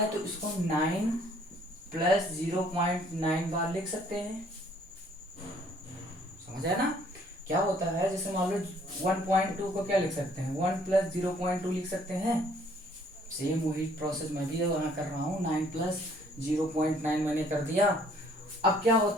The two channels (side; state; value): both; normal; correlation 0.61